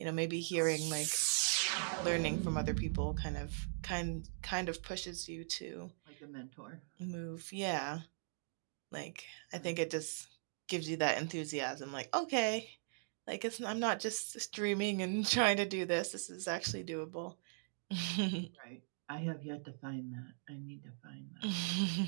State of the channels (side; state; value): left; silent; digital silence